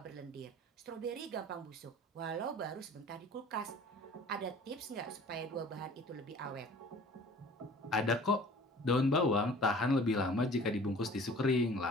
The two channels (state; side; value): normal; both; correlation 0.46